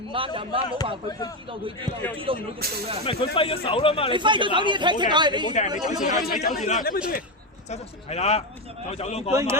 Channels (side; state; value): both; normal; correlation 0.11